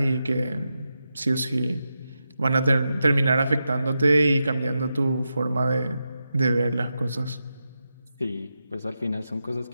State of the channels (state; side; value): inverted; both; correlation -0.88